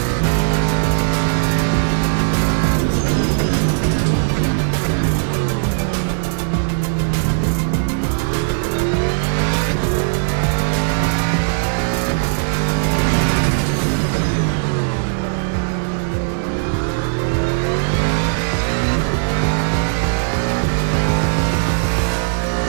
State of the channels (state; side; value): silent; left; digital silence